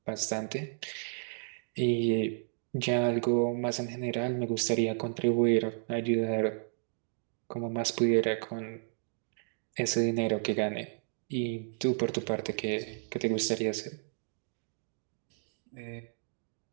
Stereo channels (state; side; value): silent; left; digital silence